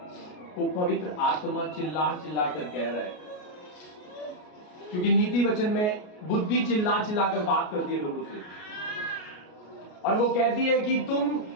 को पवित्र आत्मा चिल्ला चिल्ला कर कह रहा है, क्योंकि नीति वचन में बुद्धि चिल्ला चिल्ला कर बात करती है लोगों से, और वो कहती है कि तुम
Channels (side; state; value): right; late; 33 ms